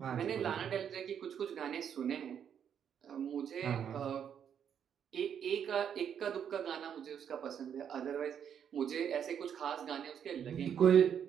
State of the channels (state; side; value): quieter; left; 8.4 dB